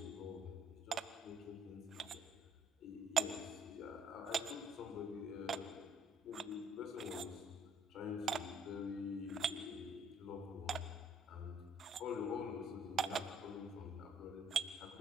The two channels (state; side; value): normal; both; correlation 0.63